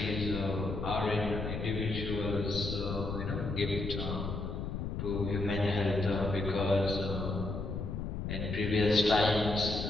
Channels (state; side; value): noise; left; rumble, 4 dB below the sound